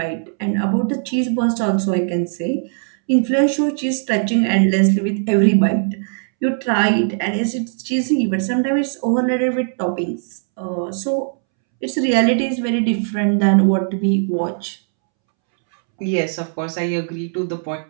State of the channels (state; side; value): silent; left; 66 dB below the other